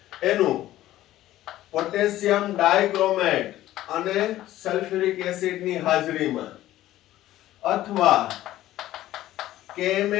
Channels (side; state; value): right; quieter; 14.5 dB